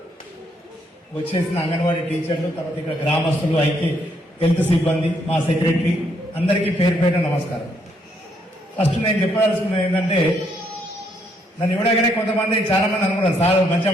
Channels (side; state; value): both; normal; correlation 0.73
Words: వచ్చేసిన అంగన్వాడీ టీచర్లు, తర్వాత ఇక్కడ గ్రామస్తులు, అయితే హెల్త్ సిబ్బంది, మా సెక్రటరీ అందరికీ పేరు పేరు నమస్కారం. ఫస్ట్ నేను చెప్పదలుచుకున్నది ఏంటంటే, నన్ను ఇవ్వడగానే కొంతమంది చాలా మంది అనుకున్నారు సార్ మంచిగా